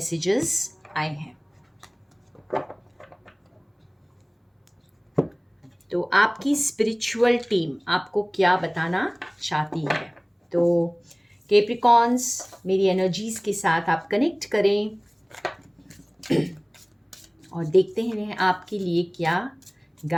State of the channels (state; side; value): identical; both; correlation 1.00